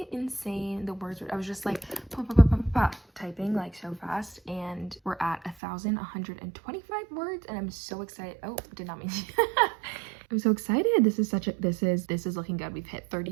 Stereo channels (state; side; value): drops out; left; at 5.6 s